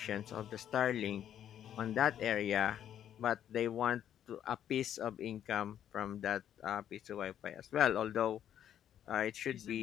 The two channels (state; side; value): quieter; right; 10.2 dB